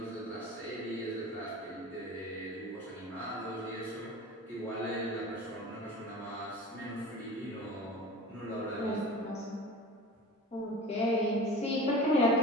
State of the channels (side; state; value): both; normal; correlation 0.36